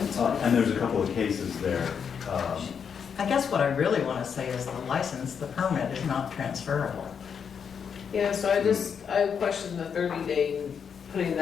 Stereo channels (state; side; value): quieter; right; 7.0 dB